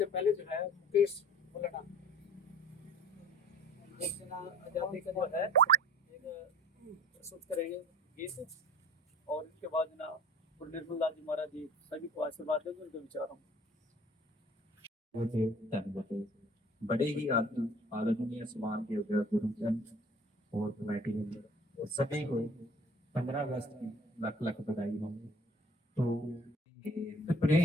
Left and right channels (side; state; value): both; normal; correlation 0.49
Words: पहले जो है मुकेश बोलना एक जना आजादी का जो है एक प्रस्तुत करेंगे गीत और इसके बाद ना और निर्मल दास जी महाराज जी सभी को आशीर्वाद देंगे उनके विचारों में। होते धन्यवाद। बड़े ही आदरणीय समान के गुरुजन और कमेटी मेंबर और सभी को 15 अगस्त की लाख लाख बधाई हो। तो देश